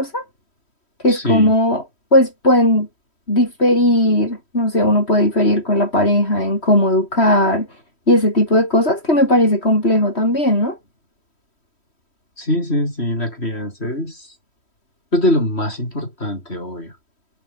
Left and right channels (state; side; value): late; right; 3.1 ms